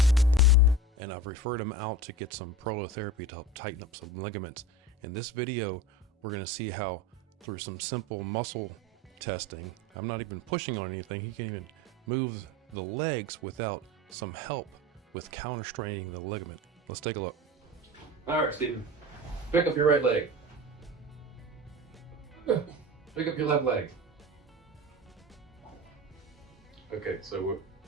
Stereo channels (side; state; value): both; normal; correlation 0.32